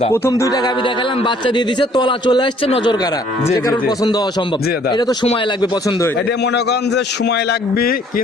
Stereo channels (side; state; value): both; normal; correlation 0.60